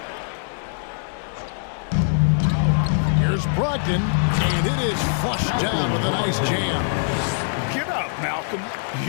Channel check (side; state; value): right; silent; digital silence